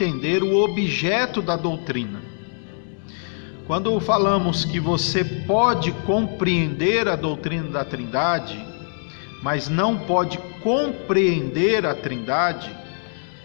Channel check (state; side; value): silent; right; digital silence